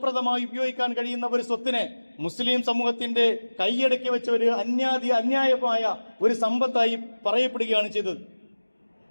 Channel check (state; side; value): inverted; both; correlation -1.00